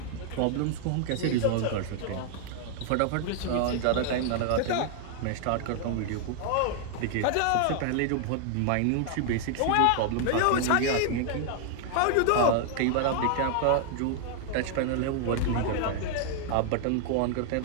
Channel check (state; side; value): different; both; correlation 0.00